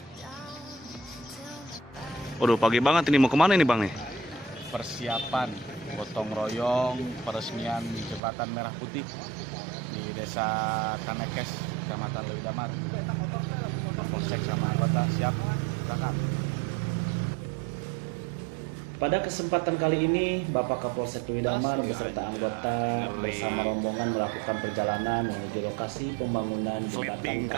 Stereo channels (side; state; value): left; drops out; at 8.2 s